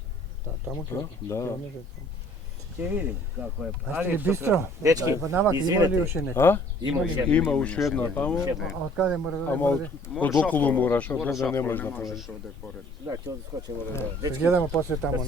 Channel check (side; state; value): both; normal; correlation 0.56